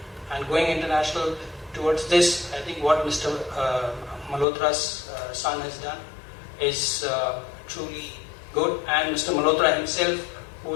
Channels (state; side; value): drops out; right; at 4.5 s